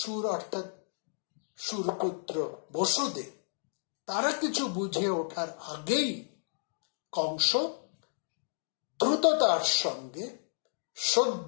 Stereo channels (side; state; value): right; silent; digital silence